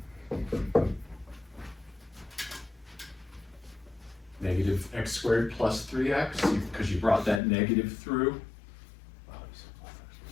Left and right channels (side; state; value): right; drops out; at 7.4 s